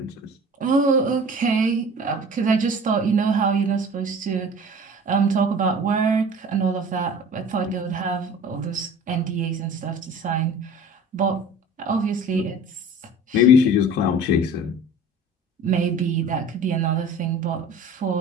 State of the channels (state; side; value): normal; both; correlation 0.43